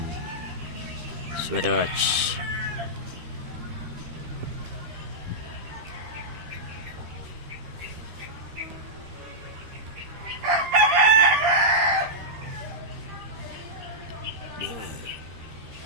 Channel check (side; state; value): left; late; 13 ms